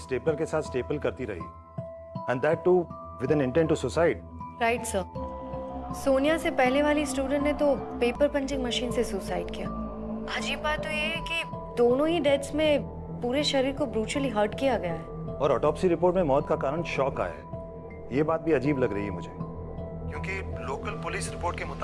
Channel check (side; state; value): both; identical; correlation 1.00